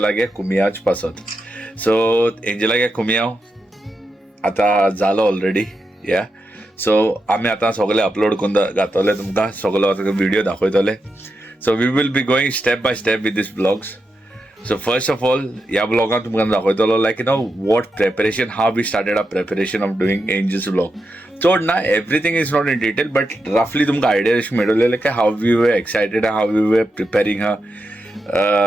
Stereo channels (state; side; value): normal; both; correlation 0.87